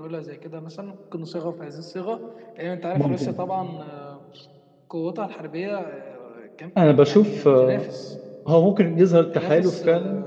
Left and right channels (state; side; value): identical; both; correlation 1.00